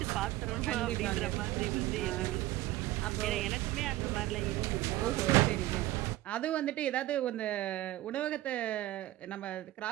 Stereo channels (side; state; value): left; quieter; 16.4 dB